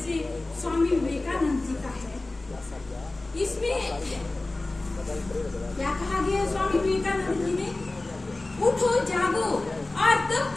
स्वामी विवेकानंद जी का है। इसमें क्या कहा गया है स्वामी विवेकानंद जी ने? उठो जागो और तब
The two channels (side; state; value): right; quieter; 3.0 dB